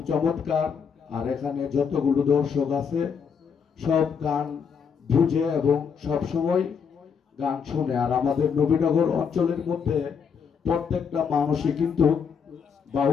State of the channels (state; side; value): quieter; right; 6.6 dB